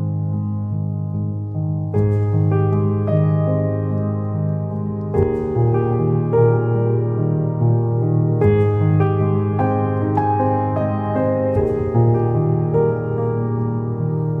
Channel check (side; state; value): both; identical; correlation 1.00